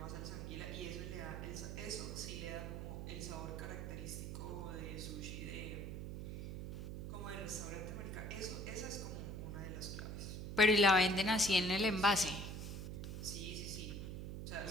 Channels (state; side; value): noise; right; hum, 6 dB below the sound